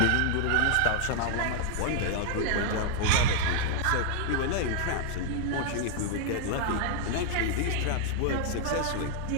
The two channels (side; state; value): both; different; correlation 0.00